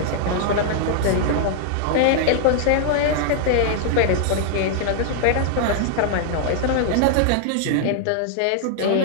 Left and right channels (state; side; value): different; both; correlation -0.01